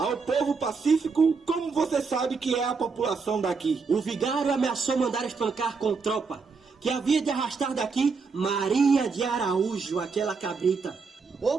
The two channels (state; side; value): quieter; left; 4.9 dB